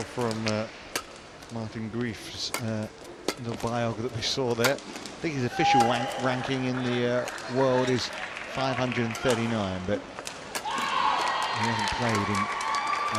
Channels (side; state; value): both; identical; correlation 1.00